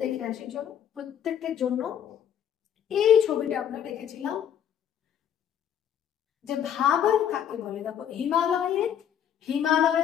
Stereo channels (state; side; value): quieter; right; 9.4 dB